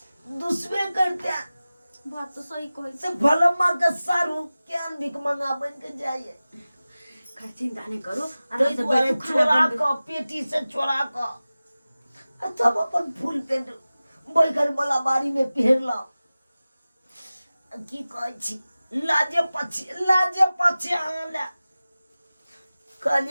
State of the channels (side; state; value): both; inverted; correlation -0.97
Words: दुश्मन करता बात तो सही कहै से भलमा का सारू क्या भिख मंगा बन के जाइए खैर चिंता नहीं करो आराम से बैठो चोरा का पेटी से चोरा का तब अपन फूल पेंट बैगन वाला बारी में पहन ला की कहै छी लाजे पछे आला